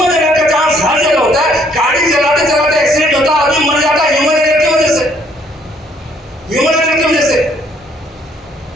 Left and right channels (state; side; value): normal; both; correlation 0.64